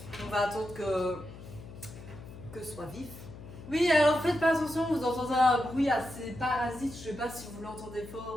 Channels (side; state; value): left; noise; hum, 15 dB below the sound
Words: On va attendre que ce soit vif. Oui, alors faites pas attention, vous entendez un bruit assez parasite, je sais pas si vous l'entendez